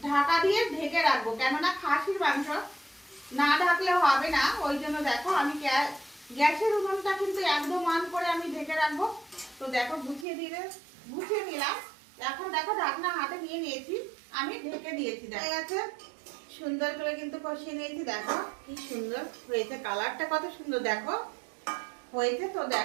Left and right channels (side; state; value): left; drops out; at 10.2 s